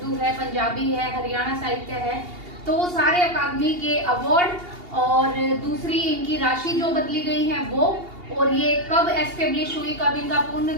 है, पंजाबी है, हरियाणा साहित्य है, तो वो सारे अकादमी के अवार्ड और दूसरी इनकी राशि जो बदली गई है वो, और ये कब एस्टेब्लिश हुई, कब इनका पूर्ण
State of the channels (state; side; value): late; left; 2.8 ms